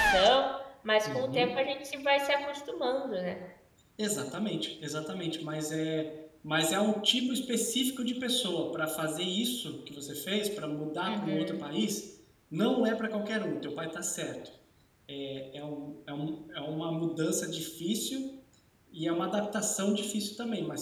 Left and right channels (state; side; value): identical; both; correlation 1.00